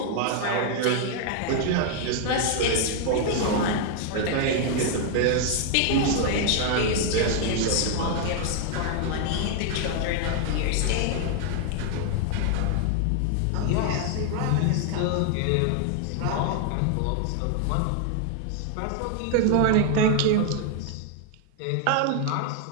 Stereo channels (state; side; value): different; both; correlation 0.00